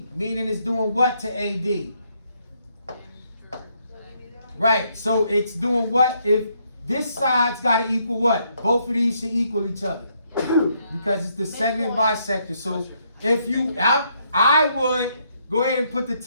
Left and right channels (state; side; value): inverted; both; correlation -0.73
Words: meaning it's doing what to AD? Right, so it's doing what? If this side's got to equal what? Both of these should equal each other because it's the segment bisector. So if you, I would go ahead and put the